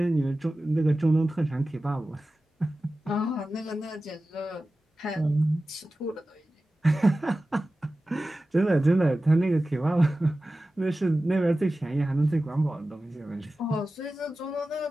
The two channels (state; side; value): normal; both; correlation 0.95